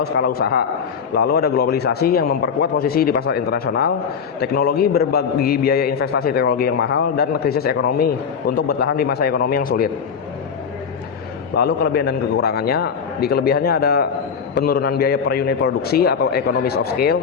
skala usaha. Lalu ada globalisasi yang memperkuat posisi di pasar internasional, teknologi berbagi biaya investasi teknologi yang mahal, dan krisis ekonomi untuk bertahan di masa ekonomi yang sulit. Lalu kelebihan dan kekurangannya, di kelebihannya ada penurunan biaya per unit produksi atau economies of scale,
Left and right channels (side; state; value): right; quieter; 6.6 dB